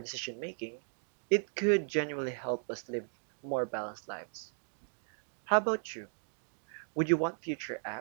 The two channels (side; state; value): left; silent; digital silence